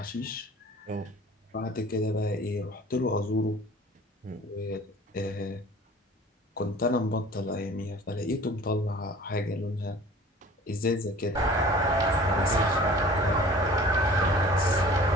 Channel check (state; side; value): normal; both; correlation 0.46